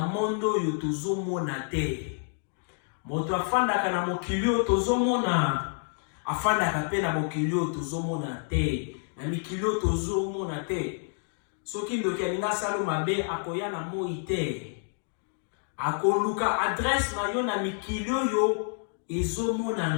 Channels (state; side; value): silent; right; 59 dB below the other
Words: mondo yo tozomona te. Moto afandaka na mokili yo tozomona. Afandaka pe na mokili yo tozomona te. Na mikili yo tozomona te. Soki ndoki alinga salo mabe akoya na moi te. Akoluka adresse na yo na mikili yo ezomona